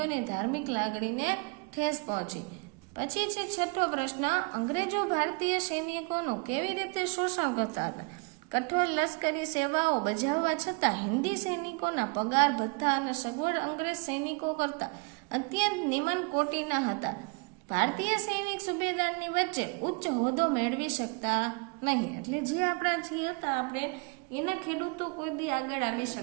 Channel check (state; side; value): quieter; left; 31.5 dB